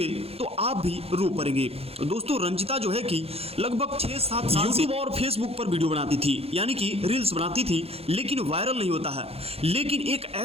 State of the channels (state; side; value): late; left; 0.29 ms